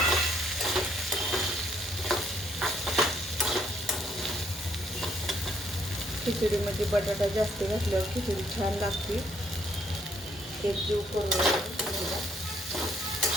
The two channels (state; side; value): normal; both; correlation 0.69